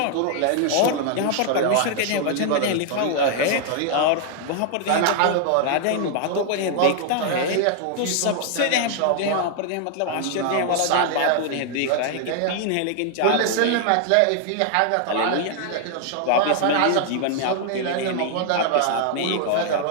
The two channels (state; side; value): different; both; correlation 0.00